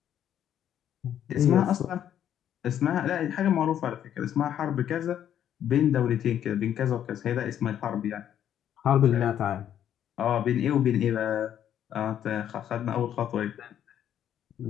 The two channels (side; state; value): right; quieter; 10.2 dB